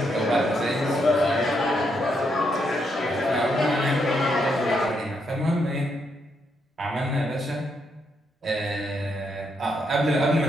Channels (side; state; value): both; normal; correlation 0.78